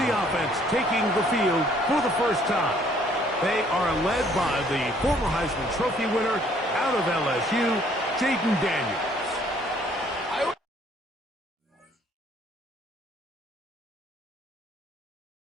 offense taking the field for the first time. They are led by the former Heisman Trophy winner out of LSU, Jaden Daniels.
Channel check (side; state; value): both; normal; correlation 0.62